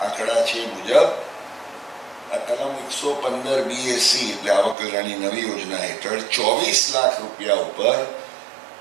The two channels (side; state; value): left; drops out; at 4.8 s